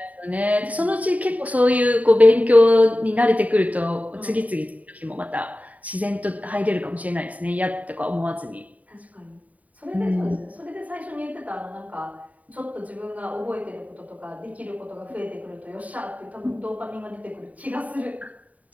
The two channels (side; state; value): left; late; 0.071 ms